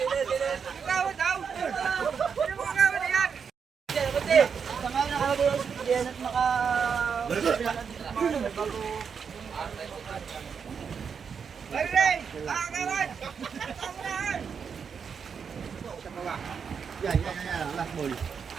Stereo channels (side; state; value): left; quieter; 6.5 dB